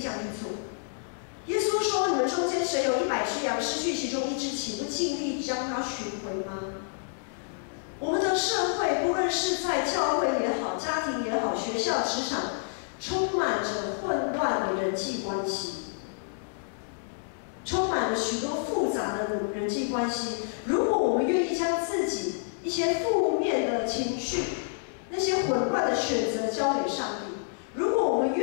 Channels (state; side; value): silent; right; digital silence